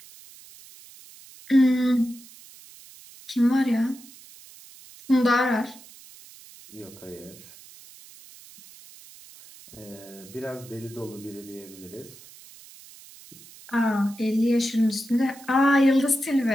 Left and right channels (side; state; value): right; noise; hiss, 21 dB below the sound